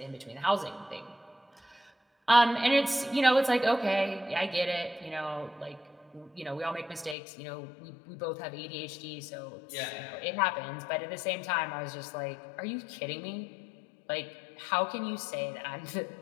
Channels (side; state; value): right; drops out; at 7.2 s